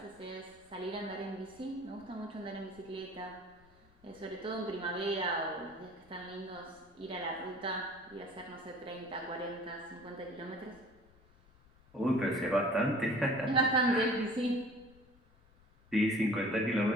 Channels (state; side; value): noise; left; rumble, 27 dB below the sound